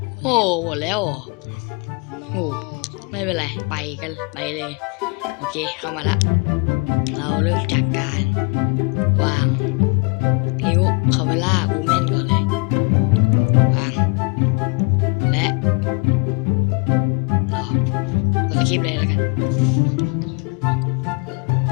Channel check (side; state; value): right; quieter; 31.6 dB